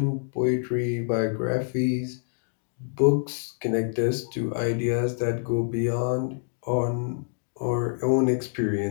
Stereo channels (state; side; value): silent; right; digital silence